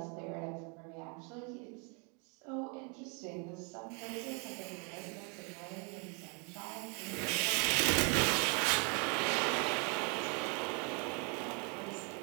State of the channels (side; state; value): left; quieter; 35.0 dB